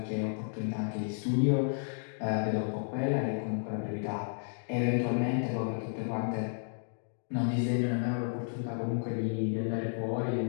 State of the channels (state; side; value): silent; right; digital silence